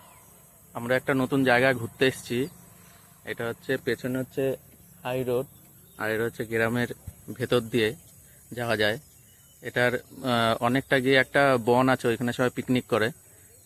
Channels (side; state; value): both; identical; correlation 1.00